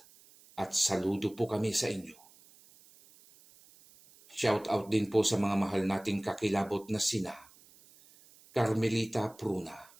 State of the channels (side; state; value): right; noise; hiss, 26 dB below the sound